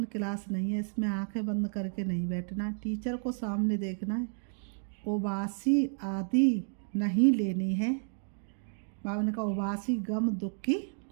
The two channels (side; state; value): left; silent; 57 dB below the other